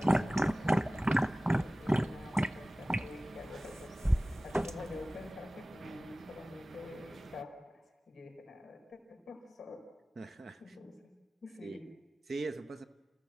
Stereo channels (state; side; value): normal; both; correlation 0.97